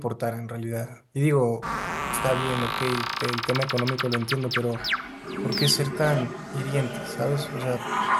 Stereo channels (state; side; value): identical; both; correlation 1.00